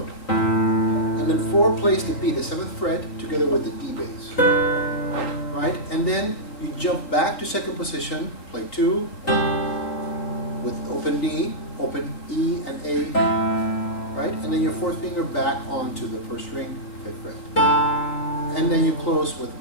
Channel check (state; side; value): late; right; 4.0 ms